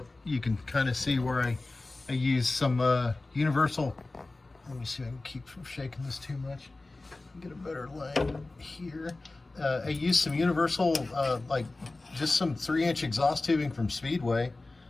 you can kind of see where I use some universal. Let me see if I can keep from shaking this too much. Get a better line here. I used some universal, like just some 3-inch exhaust tubing from Speedway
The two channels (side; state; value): right; quieter; 3.2 dB